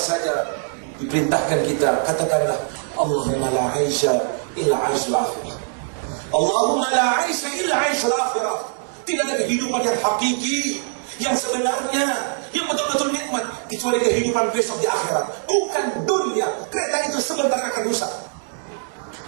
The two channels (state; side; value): silent; left; digital silence